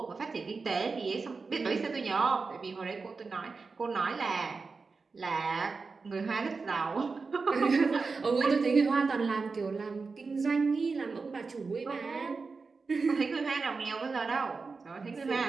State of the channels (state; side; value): quieter; left; 4.4 dB